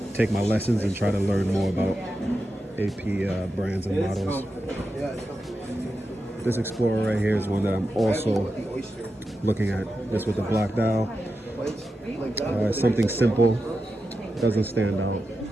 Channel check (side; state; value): both; normal; correlation 0.90